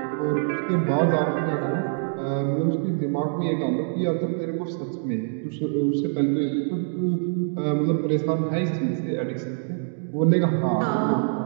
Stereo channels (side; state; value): left; silent; 62 dB below the other